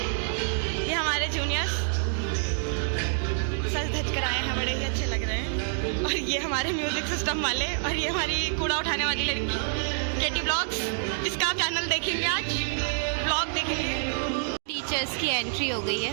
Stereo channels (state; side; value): silent; left; digital silence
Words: ये हमारे जूनियर्स सज धज कर आए हैं, बड़े ही अच्छे लग रहे हैं। और ये हमारे म्यूज़िक सिस्टम वाले, और ये हमारी कूड़ा उठाने वाली लड़की केटी व्लॉग्स, जिसका आप चैनल देखेंगे, आज व्लॉग देखेंगे। टीचर्स की एंट्री हो गई है।